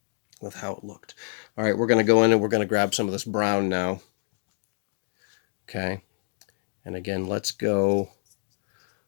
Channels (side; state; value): right; silent; digital silence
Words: with how it looked. All right, we're going to go in and we're going to grab some of this brown now. Okay. And again, let's get